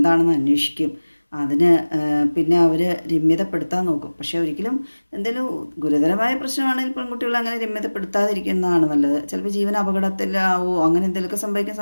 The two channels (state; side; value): inverted; both; correlation -1.00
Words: അന്വേഷിക്കും, അതിന് പിന്നെ അവർ രമ്യതപ്പെടുത്താൻ നോക്കും. പക്ഷേ ഒരിക്കലും എന്തെങ്കിലും ഗുരുതരമായ പ്രശ്നമാണെങ്കിൽ പെൺകുട്ടികൾ അങ്ങനെ രമ്യതപ്പെടുത്താതിരിക്കുന്നതാണ് നല്ലത്. ചിലപ്പോൾ ജീവൻ അപകടത്തിലാവോ അങ്ങനെ എന്തെങ്കിലുമൊക്കെ സംഭവിക്കാൻ